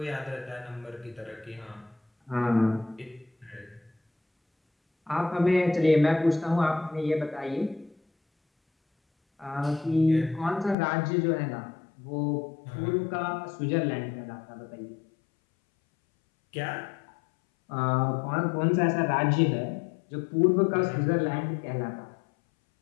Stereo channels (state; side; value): drops out; right; at 10.8 s